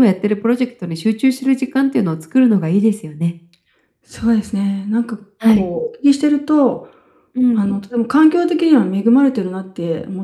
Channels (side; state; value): both; identical; correlation 1.00